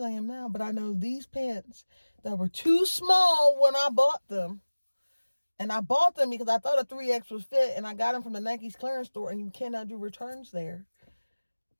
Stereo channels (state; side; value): inverted; both; correlation -1.00